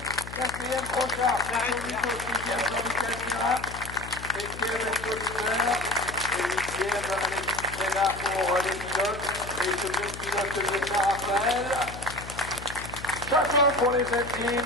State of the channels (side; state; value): left; noise; hum, 12 dB below the sound